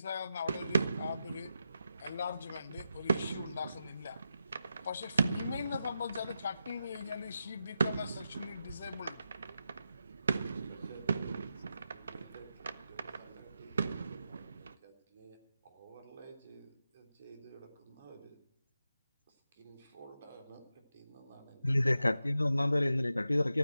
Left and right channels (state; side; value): inverted; both; correlation -0.89